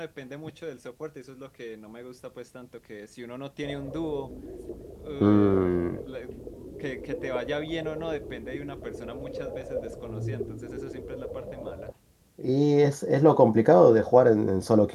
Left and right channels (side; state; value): both; identical; correlation 1.00